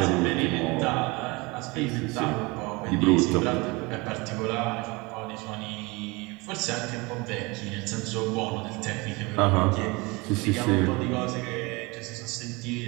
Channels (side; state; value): left; quieter; 25.4 dB